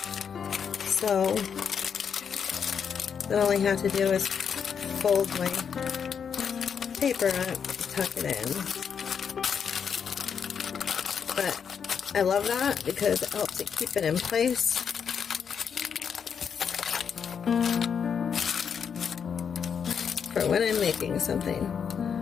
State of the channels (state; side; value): quieter; right; 7.1 dB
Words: So then all I have to do is fold my paper up, tuck it in. But I love that because it helps it keep it in place. For when I'm making something.